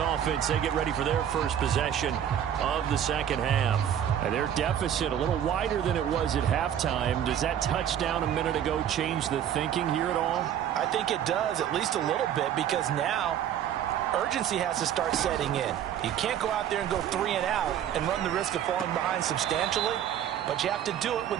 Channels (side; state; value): left; quieter; 9.9 dB